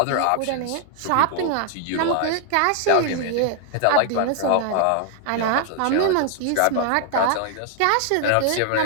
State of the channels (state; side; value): different; both; correlation 0.00